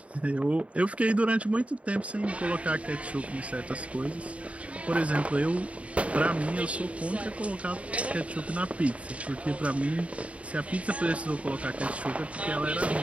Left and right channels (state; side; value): late; left; 0.064 ms